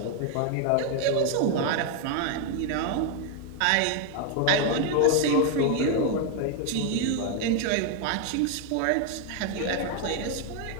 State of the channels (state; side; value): different; both; correlation 0.01